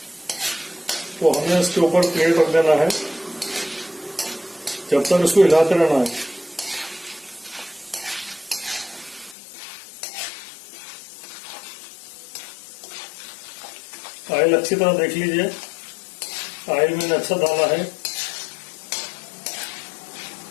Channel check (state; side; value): drops out; right; at 9.3 s